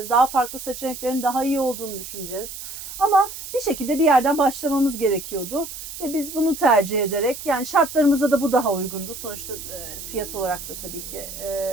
Daha farklı seçeneklerin daha iyi olduğunu düşüneceğiz. Ama bir şekilde bir yerden başlamamız gerekiyordu. Ve biz bunu tercih ederek, yani şartlarımıza da bu daha uygundu. Sonuçta fiyat olarak da tabii ki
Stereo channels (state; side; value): noise; right; hiss, 10 dB below the sound